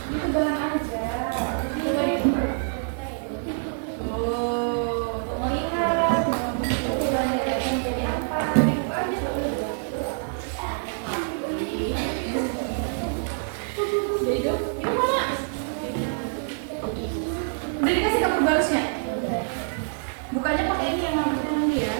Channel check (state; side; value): silent; left; 57 dB below the other